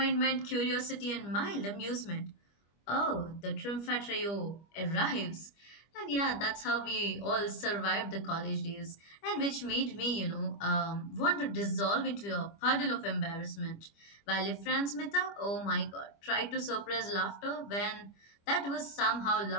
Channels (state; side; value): late; right; 25 ms